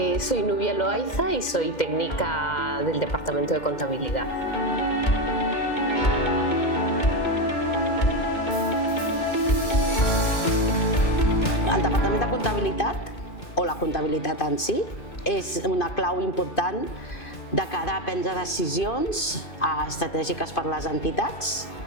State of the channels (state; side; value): late; right; 2.1 ms